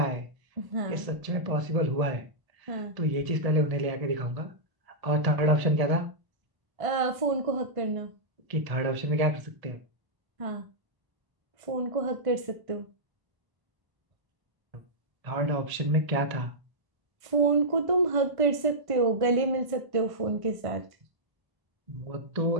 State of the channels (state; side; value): late; left; 1.0 ms